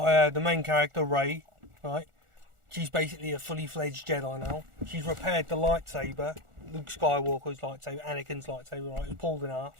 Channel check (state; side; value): late; left; 1.4 ms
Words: the main character, Rey, right? She's basically a fully fledged Jedi now. She's repaired the lightsaber, Luke Skywalker's lightsaber, Anakin's lightsaber, right? It was pulled in half